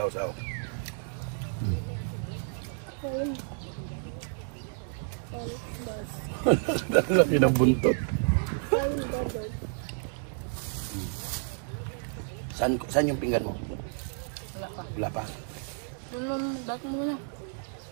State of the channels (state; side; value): silent; left; 57 dB below the other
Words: Saw. Laki ng buntot. Saan yung pinggan mo? Wala pa. Wala pa. Dati mo muna.